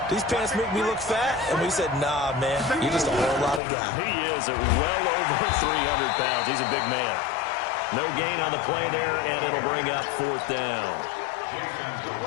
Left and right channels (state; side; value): drops out; right; at 3.6 s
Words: these pants make me look fat? And we said, nah, man, you're just a whole lot of guy. He is well over 300 pounds. He's a big man. No gain on the play there, and it'll bring up 4th down.